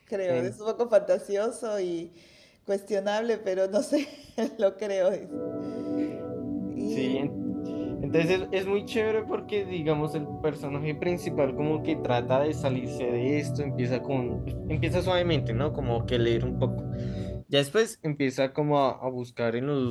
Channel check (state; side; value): identical; both; correlation 1.00